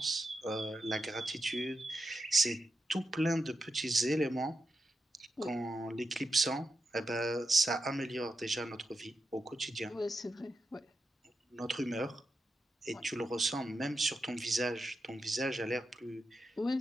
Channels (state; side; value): normal; both; correlation 0.88